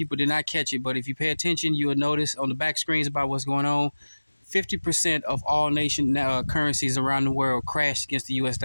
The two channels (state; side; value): inverted; both; correlation -1.00